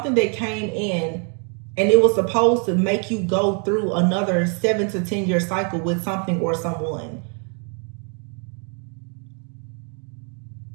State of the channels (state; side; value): quieter; left; 39.9 dB